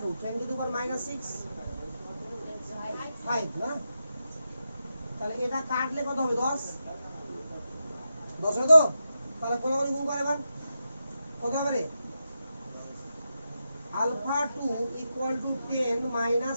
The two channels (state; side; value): inverted; both; correlation -0.88